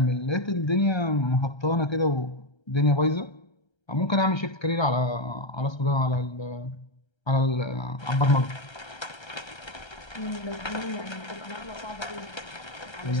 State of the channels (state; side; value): late; right; 1.3 ms